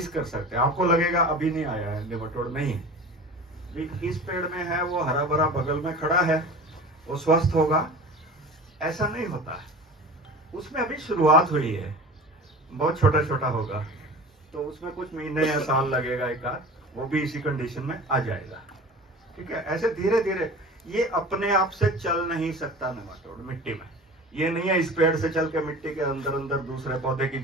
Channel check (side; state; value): both; normal; correlation 0.37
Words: कर सकते हैं। आपको लगेगा अभी नहीं आया है नेमाटोड, नहीं, इस पेड़ में है, वो हरा भरा बगल में खड़ा है, वो स्वस्थ होगा, ऐसा नहीं होता है। उसमें अभी शुरुआत हुई है, बहुत छोटा छोटा होगा, तो उसमें कुछ महीने या साल लगेगा एक आध, वो भी इसी कंडीशन में आ जाएगा, ठीक है। ऐसे धीरे धीरे, ये अपने आप से चल नहीं सकता नेमाटोड मिट्टी में, ये नहीं है इस पेड़ से चल के मिट्टी के अंदर अंदर दूसरे पौधे की